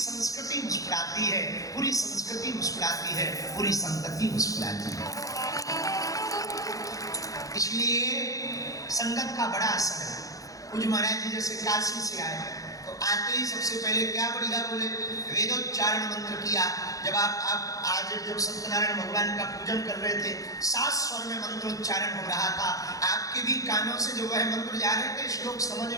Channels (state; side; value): late; right; 0.17 ms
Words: मुस्कुराती है, पूरी संस्कृति मुस्कुराती है, पूरी संतति मुस्कुराती है। इसलिए संगत का बड़ा असर है। कुछ महाराज जी जैसे काशी से आए तो आते ही सबसे पहले क्या बढ़िया बोले, वेदोच्चारण मंत्र किया। जब आप आज जब सत्यनारायण भगवान का पूजन कर रहे थे, 7 स्वर में मंत्रोच्चारण हो रहा था, आपके भी कानों से जो वह मंत्र जा रहे थे, श्लोक समझ